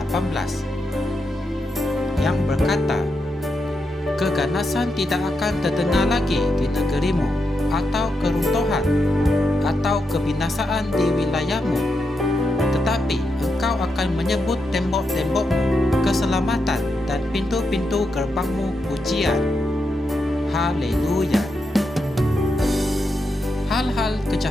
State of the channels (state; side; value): normal; both; correlation 0.84